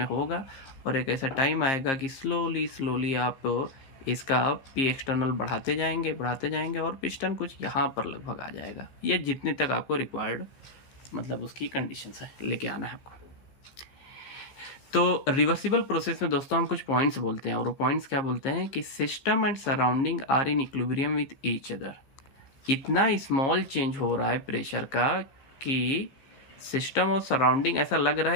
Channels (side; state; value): right; late; 15 ms